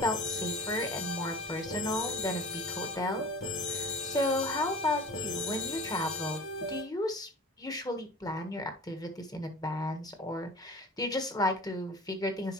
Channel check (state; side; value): normal; both; correlation 0.40